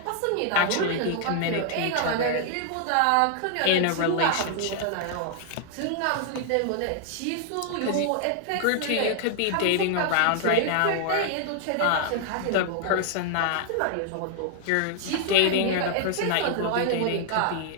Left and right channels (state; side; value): different; both; correlation 0.00